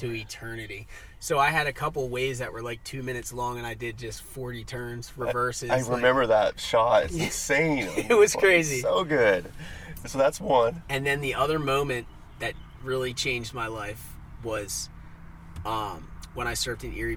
eternity. So I had a couple waves that were 2 minutes long, and I did just 40 turns, reverses. I remember that shot. It's insane. It was crazy. So good. So that's one. And then the other moment that really changed my life was when I surfed in Erie,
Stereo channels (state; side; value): identical; both; correlation 1.00